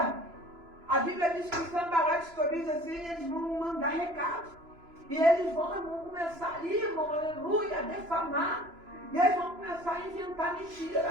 A Bíblia diz que Sambalate, Tobias, assim, eles vão mandar recado. E eles vão começar ali, irmão, aleluia, a defamar. E eles vão começar a inventar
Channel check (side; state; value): left; late; 3.0 ms